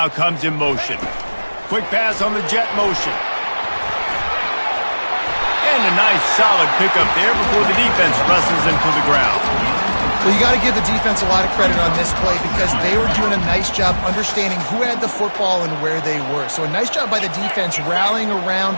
comes in motion. Quick pass on the jet motion. And a nice solid pickup there before the defense wrestles him to the ground. Well, you got to give the defense a lot of credit on this play because they were doing a nice job understanding who had the football and where they were. So a nice job by the defense rallying around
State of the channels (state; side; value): inverted; both; correlation -1.00